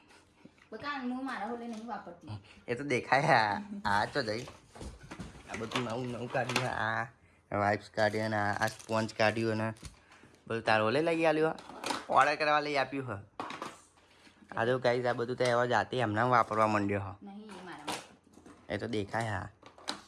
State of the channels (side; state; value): both; identical; correlation 1.00